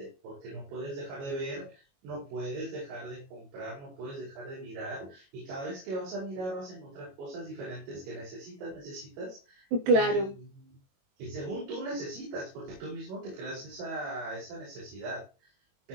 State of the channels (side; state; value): left; late; 22 ms